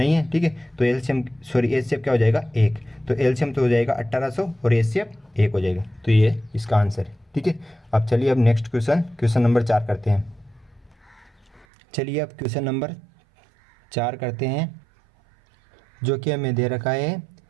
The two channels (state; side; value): drops out; left; at 11.7 s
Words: है, ठीक है। तो एचसीएफ क्या हो जाएगा 1। तो एलसीएम तो हो जाएगा 1800 और एचसीएफ 1 हो जाएगा। तो ये इसका आंसर है, ठीक है। अब चलिए अब नेक्स्ट क्वेश्चन नंबर 4 करते हैं। चलिए अब क्वेश्चन नंबर 4 करते हैं, जो कि हमें दे रखा है